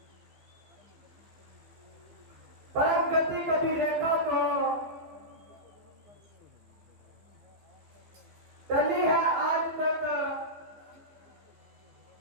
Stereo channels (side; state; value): left; late; 15 ms